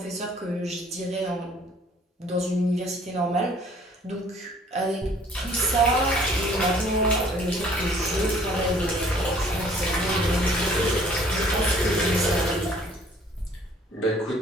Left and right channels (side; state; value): both; normal; correlation 0.57